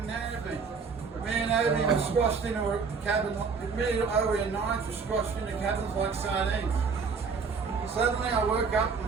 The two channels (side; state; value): left; quieter; 5.2 dB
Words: Nairobi. Me and Obi were squashed into a cabin. Me and Obi and Nines were squashed into cabins like sardines. Suddenly I woke up